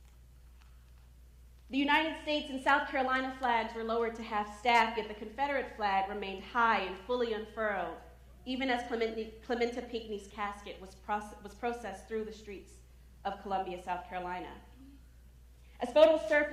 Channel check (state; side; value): identical; both; correlation 1.00